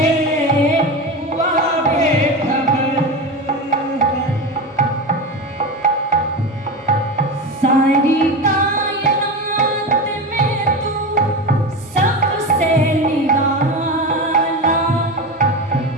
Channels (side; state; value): both; normal; correlation 0.23